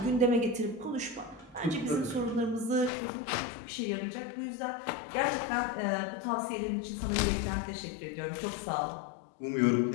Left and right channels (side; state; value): right; drops out; at 2.9 s